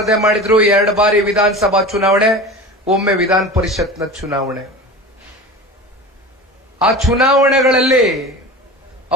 ಮಾಡಿದ್ರು, 2 ಬಾರಿ ವಿಧಾನಸಭಾ ಚುನಾವಣೆ, ಒಮ್ಮೆ ವಿಧಾನ ಪರಿಷತ್ನ ಚುನಾವಣೆ. ಆ ಚುನಾವಣೆಗಳಲ್ಲಿ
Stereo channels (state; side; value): normal; both; correlation 0.33